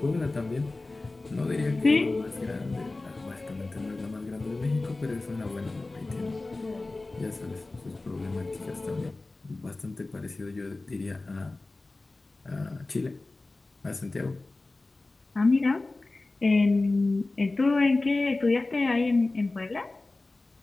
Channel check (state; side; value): quieter; right; 3.2 dB